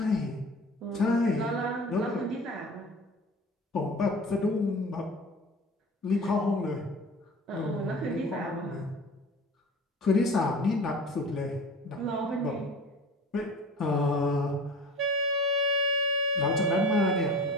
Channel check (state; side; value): normal; both; correlation 0.39